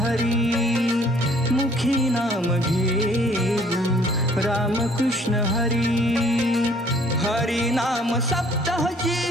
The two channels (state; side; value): normal; both; correlation 0.59